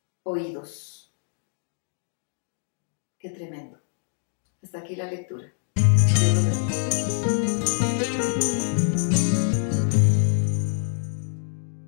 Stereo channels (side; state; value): right; silent; digital silence